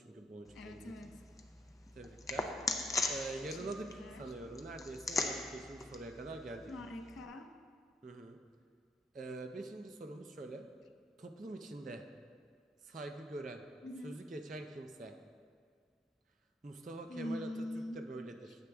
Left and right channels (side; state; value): both; normal; correlation 0.73